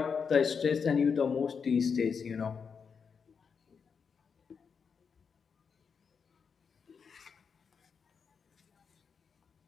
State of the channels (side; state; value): right; quieter; 6.1 dB